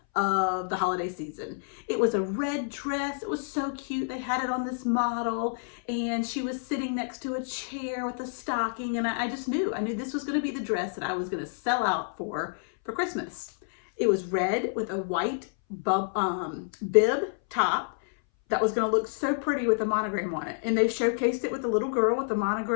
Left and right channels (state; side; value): silent; right; 59 dB below the other